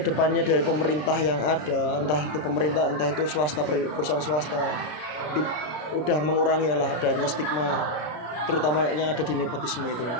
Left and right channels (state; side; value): late; right; 33 ms